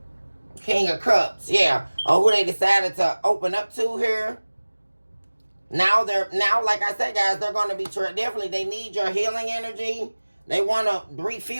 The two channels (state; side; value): inverted; both; correlation -1.00